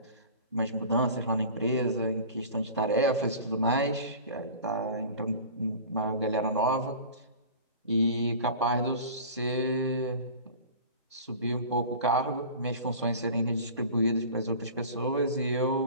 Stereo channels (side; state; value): both; inverted; correlation -0.39